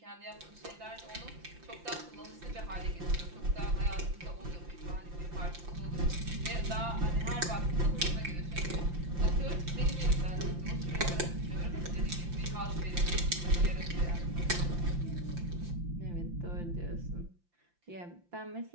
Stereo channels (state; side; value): late; left; 5.8 ms